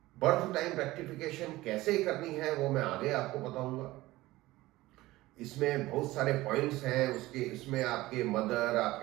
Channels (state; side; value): quieter; left; 18.2 dB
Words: बर्थ टाइम रेक्टिफिकेशन कैसे करनी है वो मैं आगे आपको बताऊंगा। इसमें बहुत सारे पॉइंट्स हैं उसके, इसमें आपके मदर,